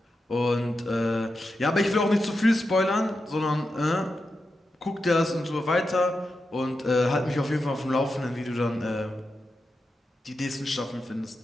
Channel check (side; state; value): both; normal; correlation 0.89